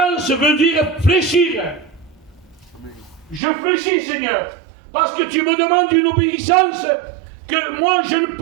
veut dire fléchir. Je fléchis, Seigneur. Parce que tu me demandes une obéissance que moi je ne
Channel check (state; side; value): drops out; left; at 3.4 s